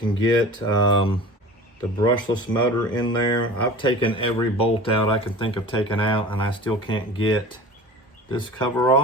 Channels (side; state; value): both; normal; correlation 0.39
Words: get the brushless motor in there. I've taken every bolt out I can think of taking out, and I still can't get this cover